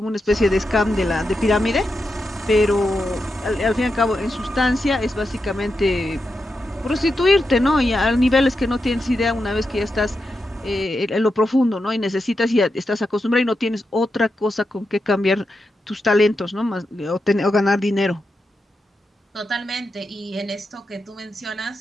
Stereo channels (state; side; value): normal; both; correlation 0.87